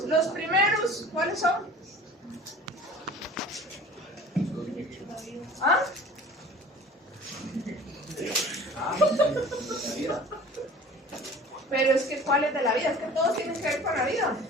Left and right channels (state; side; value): normal; both; correlation 0.44